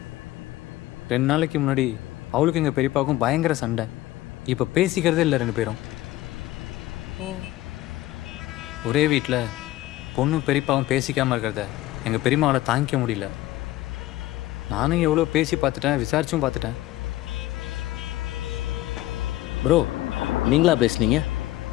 2 நாளைக்கு முன்னாடி அவளுக்கு எங்கள் பெரியப்பாவுக்கும் பயங்கர சண்டை. இப்போ பேசிக்கிறதே இல்லை 2 பேரும். ஒரே வீட்டில் பொண்ணு பெரியப்பாவும் பேசிக்காமல் இருக்கிறத எங்கள் பெரியம்மாவால் தாங்கிக்க முடியல. நானும் எவ்வளோ பேசி பார்த்துட்டேன், விசாரிச்சும் பார்த்துட்டேன். ப்ரோ நீங்களா பேசுனீங்க?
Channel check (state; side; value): quieter; right; 16.0 dB